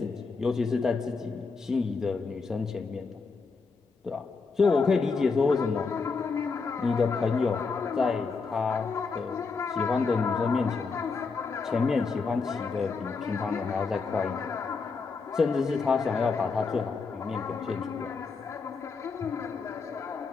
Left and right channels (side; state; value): right; quieter; 4.6 dB